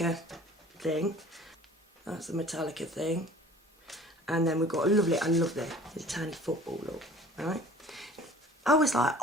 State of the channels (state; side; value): normal; both; correlation 0.48